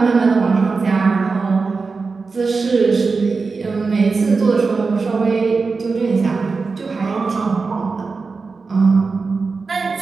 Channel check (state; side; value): quieter; left; 4.4 dB